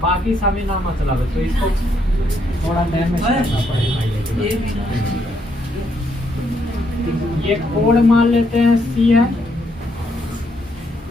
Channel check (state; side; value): normal; both; correlation 0.75